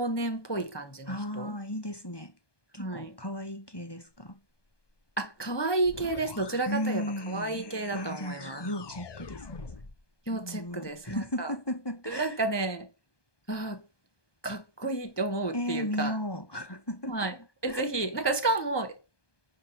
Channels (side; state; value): right; late; 1.2 ms